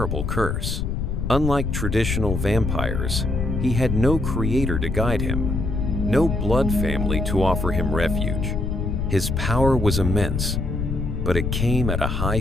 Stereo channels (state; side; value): noise; left; rumble, 1 dB below the sound